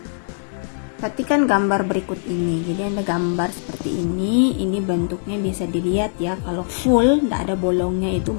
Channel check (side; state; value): right; silent; digital silence